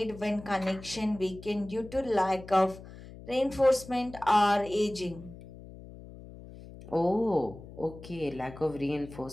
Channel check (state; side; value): noise; left; hum, 16 dB below the sound